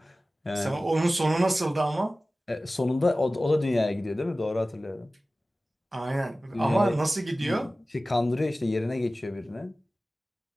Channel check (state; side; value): normal; both; correlation 0.96